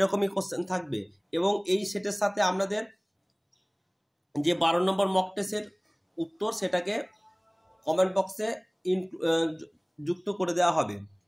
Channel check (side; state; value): both; identical; correlation 1.00